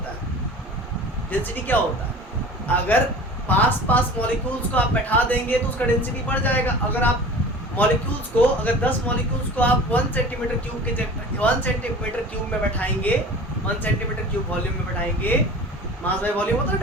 है, अगर पास मॉलिक्यूल्स को आप बैठा देंगे तो उसका डेंसिटी बढ़ जाएगा। अगर आप मॉलिक्यूल्स को, अगर 10 मॉलिक्यूल्स को आप 1 सेंटीमीटर क्यूब में बैठाएंगे 1 सेंटीमीटर क्यूब वॉल्यूम में बैठाएंगे, मास बाय वॉल्यूम होता है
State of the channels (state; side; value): normal; both; correlation 0.39